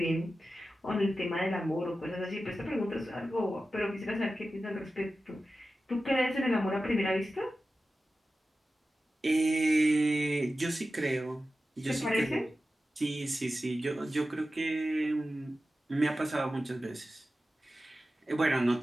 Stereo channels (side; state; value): both; normal; correlation 0.94